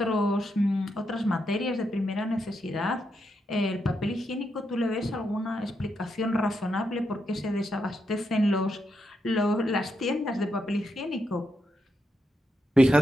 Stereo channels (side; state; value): both; normal; correlation 0.82